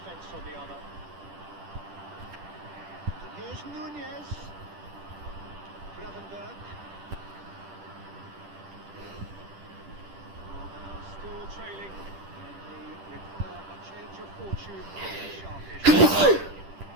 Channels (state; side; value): late; left; 10 ms